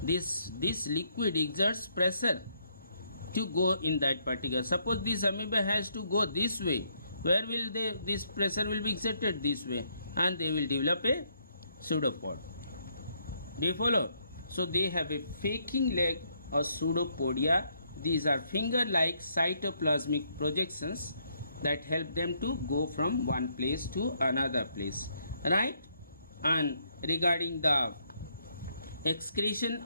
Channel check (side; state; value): both; inverted; correlation -0.72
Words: This liquid exerts pressure to go in that particular. Suppose this amoeba has to go this way. Where will this pressure will be exerted? This way, and they will develop a pseudopod. Do you follow? So they have a faking leg or pseudopodia. These are finger-like cytoplasmic projections that help them to go from one place to another place, right? And regarding the excretion,